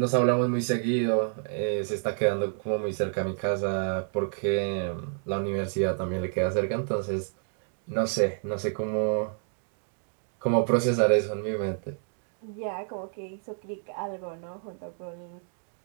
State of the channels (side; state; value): left; silent; 59 dB below the other